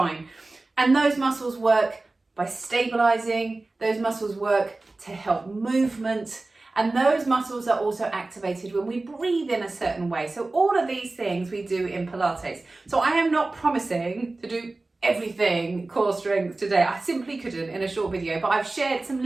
And those muscles work by stabilizing, those muscles work to help movement, and those muscles are also activated when we breathe in a certain way. So all of these things we do in Pilates. So I am not promising to do everything core strength today. I simply couldn't in a short video, but I've shared some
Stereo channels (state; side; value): quieter; left; 3.2 dB